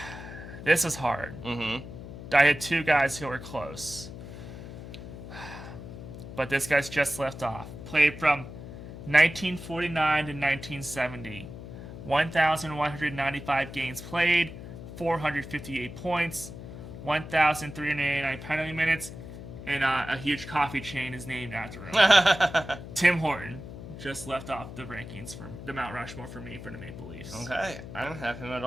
This is hard. Mm-hmm. I had 2 guys who were close. But this guy's just left off. Played from 1949 to 1970. 1,195 games played. 458 points. 1,389 penalty minutes. And a huge coffee chain is named after him. Tim Horton just left off the rankings for the Mount Rushmore for me for the Maple Leafs. Okay. I don't have him at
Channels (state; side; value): noise; left; hum, 12 dB below the sound